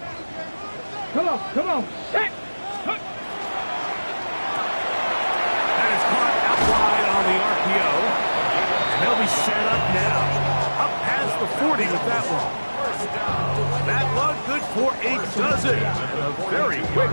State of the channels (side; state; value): both; inverted; correlation -1.00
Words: Come on, set! That is caught out wide on the RPO. And they'll be set up now. Up past the 40 with that one. That one good for a dozen. A very quick